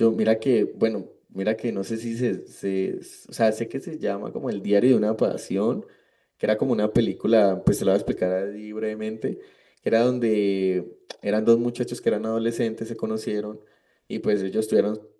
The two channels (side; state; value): both; identical; correlation 1.00